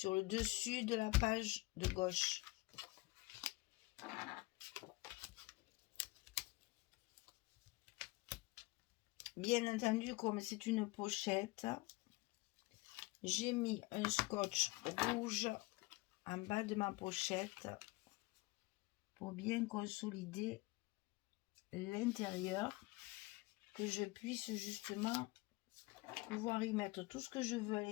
le dessus de la page de gauche. Bien entendu, comme c'est une pochette, j'ai mis un scotch rouge en bas de ma pochette pour bien consolider l'intérieur, que je puisse justement pouvoir y mettre tout ce que je veux à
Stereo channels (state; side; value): quieter; right; 22.9 dB